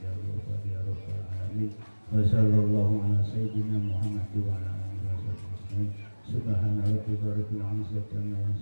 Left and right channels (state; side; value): inverted; both; correlation -1.00